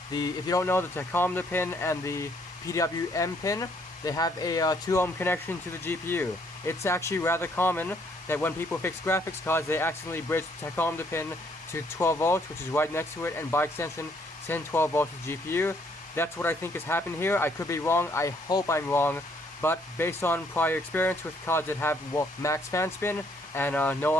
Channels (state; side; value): normal; both; correlation 0.67